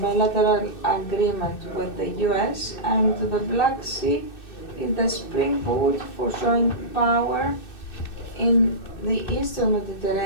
bilateral agreement with the US, and the Black Sea is the springboard for showing power in the Eastern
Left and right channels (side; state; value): right; late; 2.6 ms